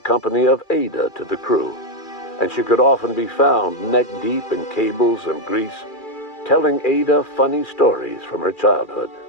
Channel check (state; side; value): late; right; 2.4 ms